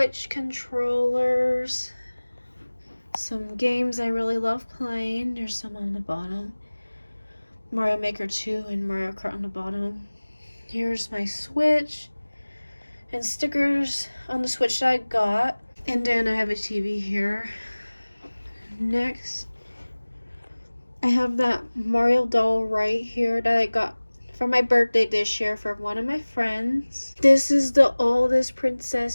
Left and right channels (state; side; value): inverted; both; correlation -1.00